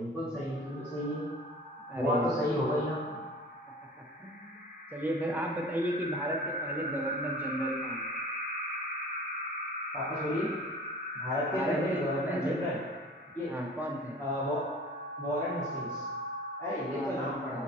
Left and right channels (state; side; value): normal; both; correlation 0.42